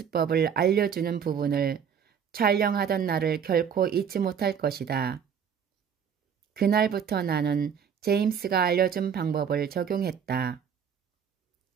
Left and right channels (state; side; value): quieter; left; 7.6 dB